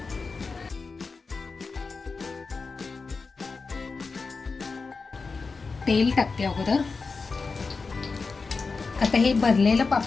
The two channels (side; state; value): right; quieter; 4.4 dB